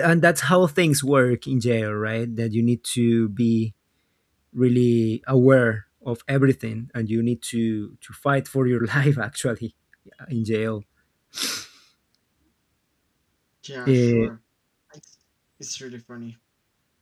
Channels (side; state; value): both; identical; correlation 1.00